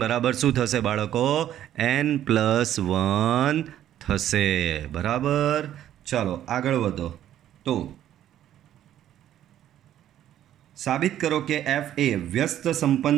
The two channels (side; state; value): left; quieter; 11.6 dB